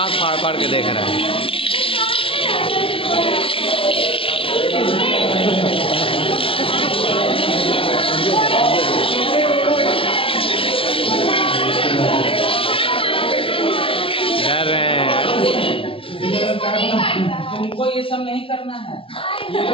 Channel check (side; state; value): right; late; 0.26 ms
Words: फाड़ फाड़ के देख रहा है। डर रहे हैं। तुमको ये सब नहीं करना है। ये